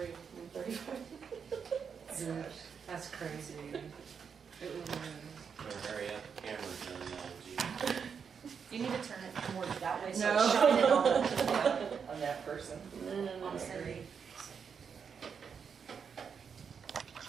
in 35 minutes. That's crazy. It was. Better hurry up, the camera's done now, gee. You need to turn it more that way so No. it's shining on. On that person. No. On Cindy.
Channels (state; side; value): quieter; left; 6.6 dB